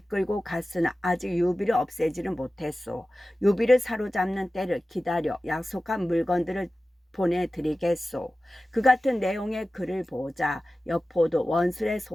갔으나 아직 유비를 없애지는 못했소. 유비를 사로잡는 때를 기다려 약속한 물건들을 보내드리겠소. 그 같은 내용의 글을 보자 여포도 원술의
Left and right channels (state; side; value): normal; both; correlation 0.95